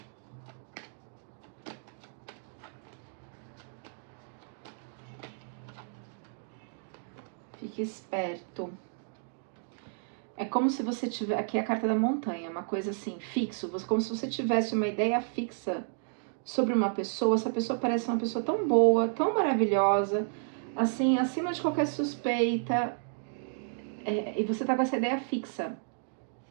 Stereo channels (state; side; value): silent; left; digital silence